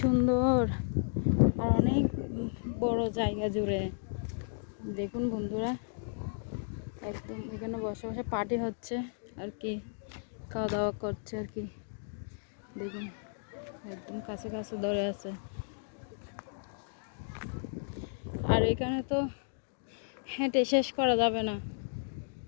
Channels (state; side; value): silent; right; digital silence